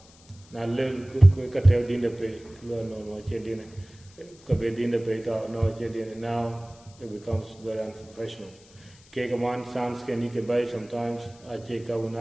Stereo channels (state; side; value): noise; left; hiss, 25 dB below the sound